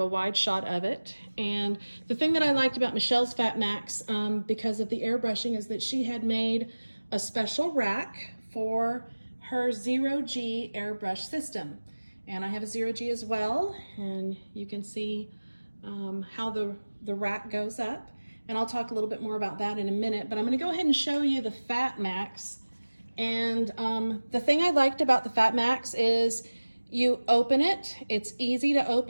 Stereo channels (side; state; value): both; inverted; correlation -1.00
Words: a wide shot of it. And the thing that I liked about Michelle's FatMax, because of the airbrushing, is that she had made a special rack for her 0G airbrush system. And I have a 0G as well, and you can see how the rack goes up. And I'll talk a little bit more about that in a minute, but I'm gonna go ahead and show you the FatMax. And the thing I liked about the FatMax is you open it, it's easy to